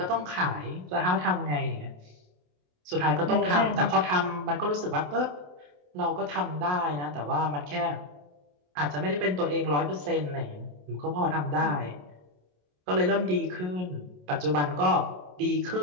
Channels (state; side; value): late; left; 27 ms